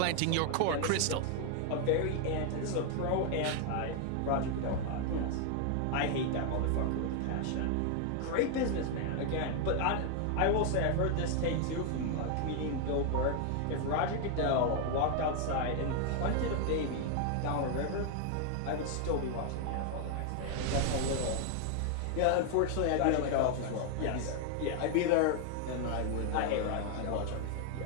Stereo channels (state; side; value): different; both; correlation 0.00